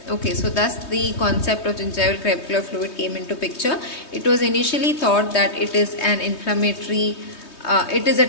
Okay, so thus the concept of gingival crevicular fluid came into picture. It was initially thought that it is an inflammatory, it is a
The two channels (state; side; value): late; right; 3.2 ms